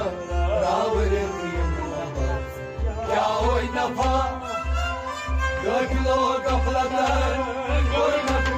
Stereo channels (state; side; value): identical; both; correlation 1.00